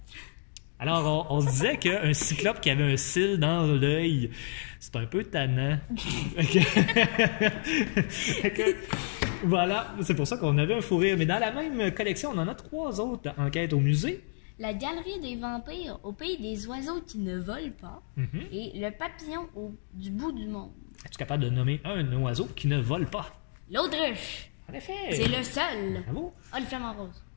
Alors, on se disait qu'un cyclope qui avait un cil dans l'œil, c'est un peu tannant. Fait que, voilà, c'est pour ça qu'on avait un fou rire. Mais dans la même collection, on en a 3 autres enquêtes au musée. La galerie des vampires au pays des oiseaux qui ne volent pas. Et le papillon du bout du monde. Es-tu capable de nommer un oiseau qui ne vole pas? L'autruche. En effet! C'est le seul. Bravo! Ah, le flamant rose.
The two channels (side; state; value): right; silent; digital silence